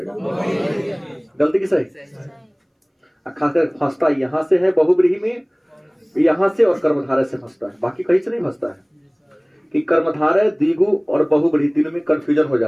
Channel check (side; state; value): both; identical; correlation 1.00